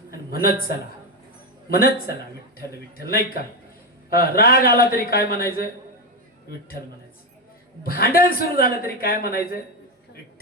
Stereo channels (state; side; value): normal; both; correlation 0.11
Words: आणि म्हणत चला विठ्ठल विठ्ठल नाही का राग आला तरी काय म्हणायचं विठ्ठल म्हणायचं भांडण सुरू झालं तरी काय म्हणायचं